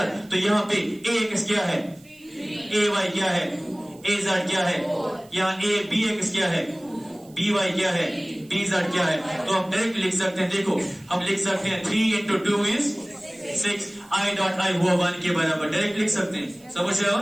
तो यहाँ पे ax क्या है, ay क्या है, az क्या है, यहाँ a bx क्या है, by क्या है, bz क्या है, तो हम डायरेक्ट लिख सकते हैं, देखो हम लिख सकते हैं 3 into 2 is 6, i dot i हुआ 1 के बराबर, डायरेक्ट लिख सकते हैं, समझ रहे हो।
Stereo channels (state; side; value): noise; right; hiss, 27 dB below the sound